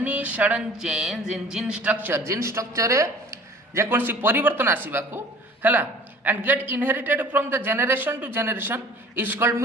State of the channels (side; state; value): both; normal; correlation 0.46